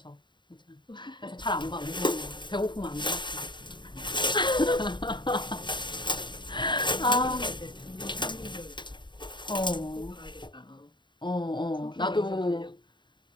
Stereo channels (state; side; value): late; right; 0.22 ms